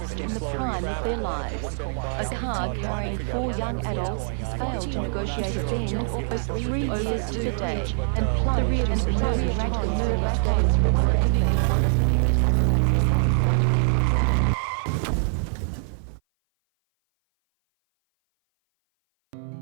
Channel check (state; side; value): silent; left; 57 dB below the other